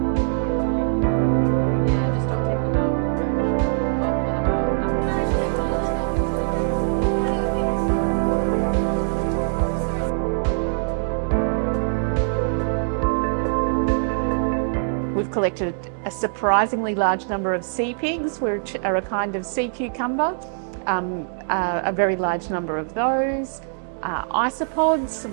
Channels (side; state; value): left; silent; digital silence